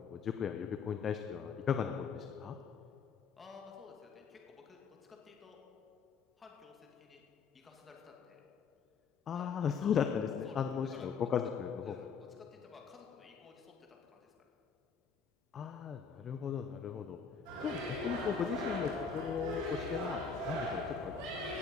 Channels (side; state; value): right; quieter; 5.7 dB